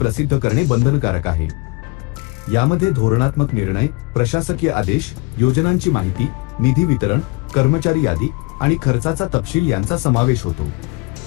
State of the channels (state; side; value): quieter; right; 27.4 dB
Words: करणे बंधनकारक आहे। यामध्ये धोरणात्मक निर्णय, प्रशासकीय आदेश, योजनांची माहिती, निधी वितरण, कर्मचारी यादी आणि खर्चाचा तपशील यांचा समावेश होतो।